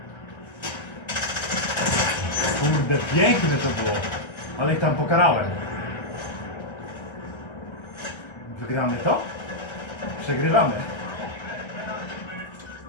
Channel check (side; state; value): right; late; 1.3 ms